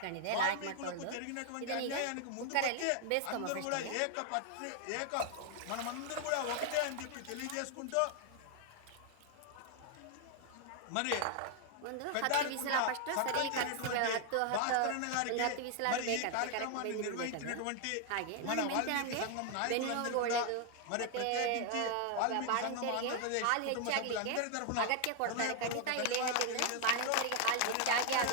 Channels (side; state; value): both; different; correlation 0.00